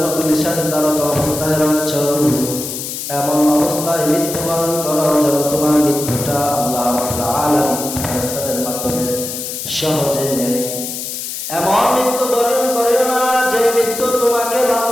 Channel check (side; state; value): left; noise; hiss, 6 dB below the sound